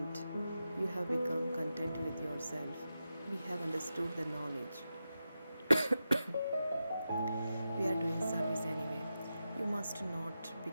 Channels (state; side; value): inverted; both; correlation -0.90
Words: You have become content with yourself. We have understood the knowledge. We are doing service anyway. You must not